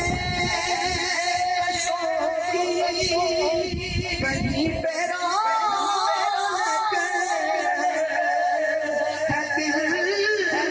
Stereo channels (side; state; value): both; identical; correlation 1.00